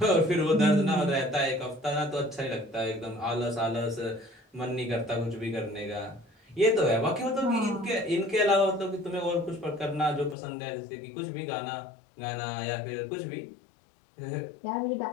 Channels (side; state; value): right; drops out; at 10.4 s